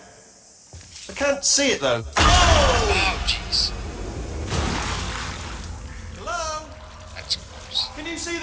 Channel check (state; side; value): identical; both; correlation 1.00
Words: I can't see it though. Oh, jeez. Hello? That's gross. Can you see